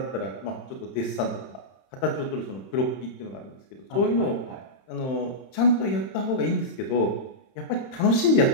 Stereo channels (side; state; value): right; late; 31 ms